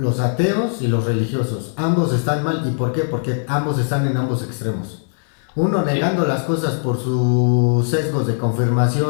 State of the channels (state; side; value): silent; right; 66 dB below the other